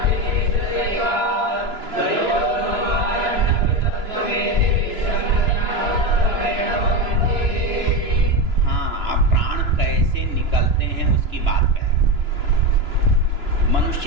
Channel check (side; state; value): left; late; 2.9 ms